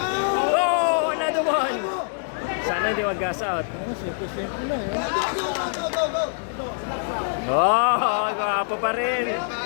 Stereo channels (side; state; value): right; silent; digital silence